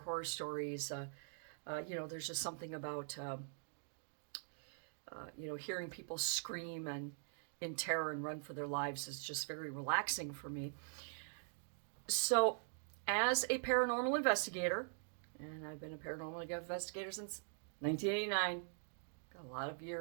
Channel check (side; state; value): left; silent; digital silence